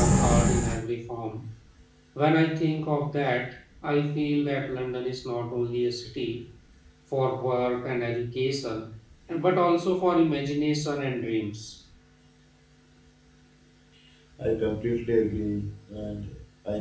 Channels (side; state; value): both; identical; correlation 1.00